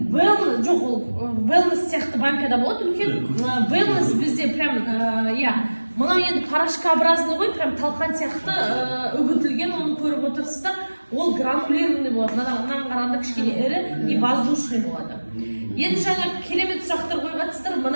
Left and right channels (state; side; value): inverted; both; correlation -1.00